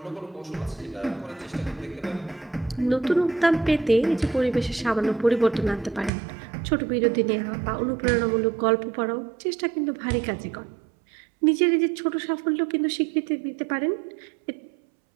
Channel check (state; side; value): drops out; left; at 6.1 s